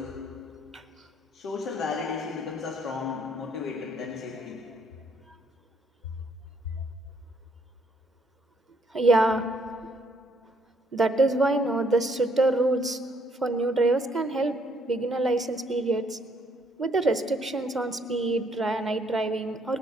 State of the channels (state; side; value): normal; both; correlation 0.67